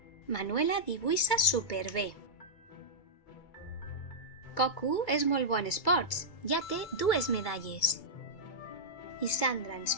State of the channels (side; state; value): right; late; 2.2 ms